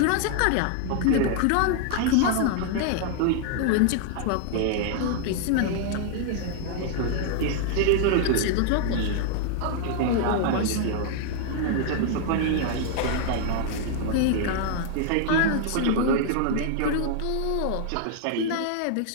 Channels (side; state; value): both; different; correlation 0.00